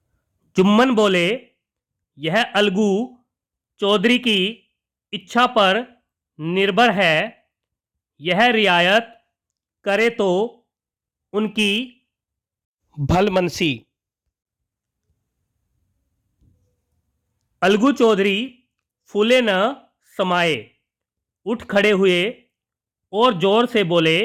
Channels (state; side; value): identical; both; correlation 1.00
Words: जुम्मन बोले, यह अलगू चौधरी की इच्छा पर निर्भर है। यह रियायत करे तो उनकी भलमनसी। अलगू चौधरी फूले न समाये, उठ खड़े हुए और जोर से बोले,